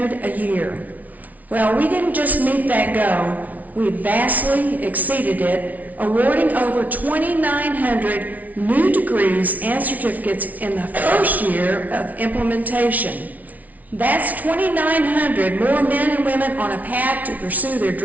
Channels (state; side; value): late; left; 0.074 ms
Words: a year. Well, we didn't just meet that goal, we vastly exceeded it, awarding over 2,900 new degrees and certificates in the first year of implementation. That's 2,900 more men and women on a path to pursue their